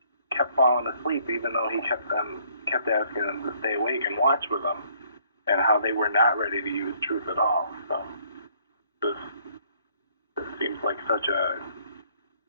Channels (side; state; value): both; inverted; correlation -0.63